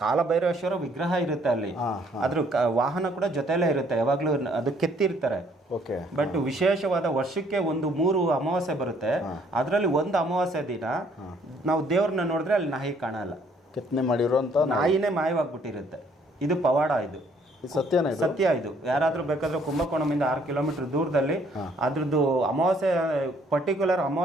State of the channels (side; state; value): both; normal; correlation 0.64